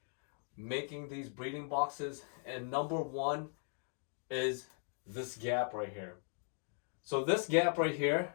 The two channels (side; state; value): right; silent; 52 dB below the other